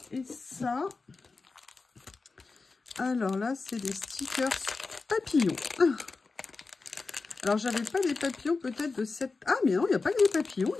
et ça. Alors là, c'est des stickers papillons. Alors, j'avais pas des papillons peut-être de cette... Ah, mais non, il n'y a pas que des papillons,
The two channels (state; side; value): quieter; right; 4.1 dB